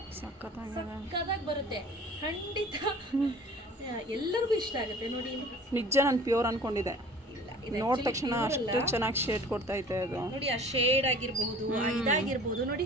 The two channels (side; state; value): both; normal; correlation 0.46